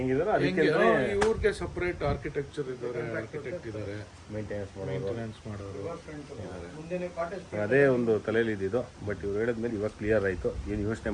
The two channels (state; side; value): identical; both; correlation 1.00